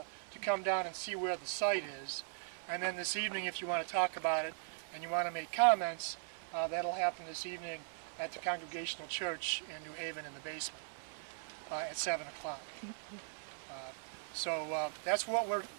come down and see where the site is. And then this evening, if you want to talk about it and you want to make comments, that'll happen this evening at the Congregational Church in New Haven in the basement at 7 o'clock. So that's what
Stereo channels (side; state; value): left; silent; 52 dB below the other